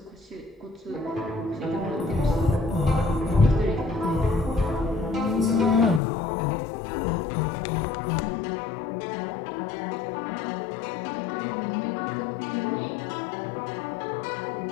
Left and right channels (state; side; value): drops out; right; at 6.0 s